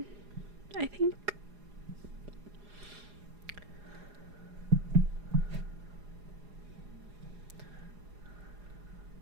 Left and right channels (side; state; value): left; late; 4.8 ms